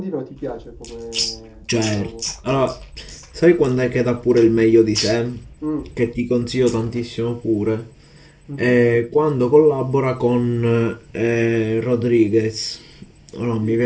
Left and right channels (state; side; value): identical; both; correlation 1.00